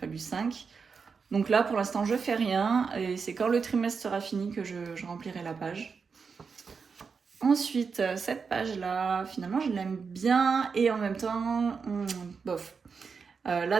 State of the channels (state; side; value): quieter; left; 5.4 dB